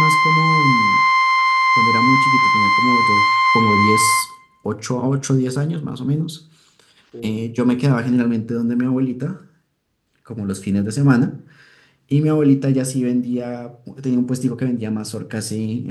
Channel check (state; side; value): identical; both; correlation 1.00